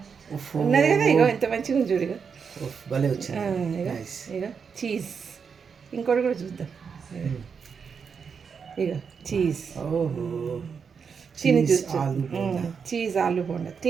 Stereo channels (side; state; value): left; quieter; 6.2 dB